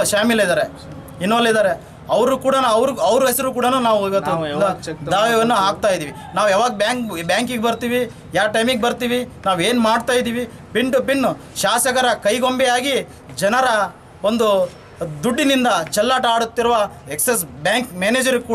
ಇನ್ವಾಲ್ವ್ ಇದ್ದಾರೆ. ಅವರು ಕೂಡ ಅವ್ರ ಹೆಸರು ಕೂಡ ನಾವು ಇವತ್ತು ದಾವೆಯನ್ನು ಹಾಕ್ತಾ ಇದ್ದೀವಿ. ನಾವು ಯಾವಾಗ ಬ್ಯಾಂಕಿಗೆ ಬರ್ತೀವಿ, ಯಾವ ಟೈಮಿಗೆ ಬರ್ತೀವಿ, ನಾವು ಏನು ಮಾಡ್ತಾ ಇದ್ದೀವಿ, ಪಿನ್ ಟು ಪಿನ್ ಶಾಸಕರ ಕೈಗೊಂಬೆಯಾಗಿ ಜನರ ಒಂದು ದುಡ್ಡಿನಿಂದ ಚೆಲ್ಲಾಟ ಆಡುತ್ತಿರುವ ಎಕ್ಸಿಸ್ ಬ್ಯಾಂಕ್ ಮ್ಯಾನೇಜರ್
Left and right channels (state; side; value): identical; both; correlation 1.00